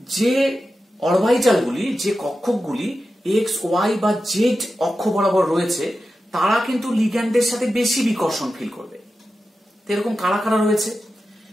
যে অরবিটালগুলি, যে কক্ষকগুলি এক্স, ওয়াই বা জেড অক্ষ বরাবর রয়েছে, তারা কিন্তু লিগ্যান্ডের সাথে বেশি বিকর্ষণ ফিল করবে। এরকম কারা কারা রয়েছে,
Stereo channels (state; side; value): normal; both; correlation 0.92